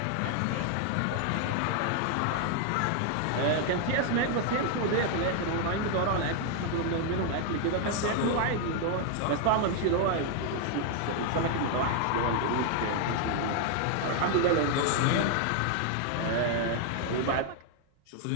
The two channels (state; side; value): different; both; correlation 0.00